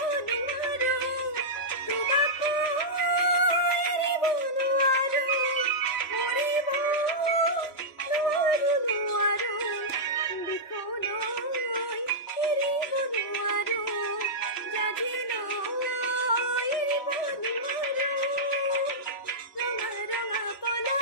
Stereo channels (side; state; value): right; late; 3.3 ms